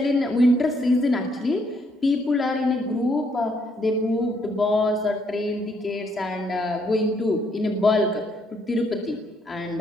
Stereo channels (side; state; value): both; normal; correlation 0.71